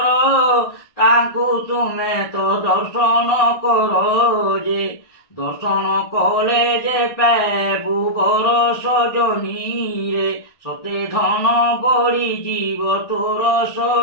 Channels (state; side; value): late; right; 1.5 ms